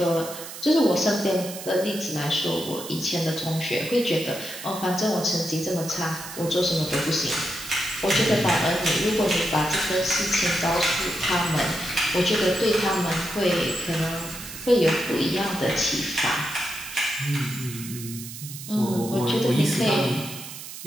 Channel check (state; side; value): noise; right; hiss, 11 dB below the sound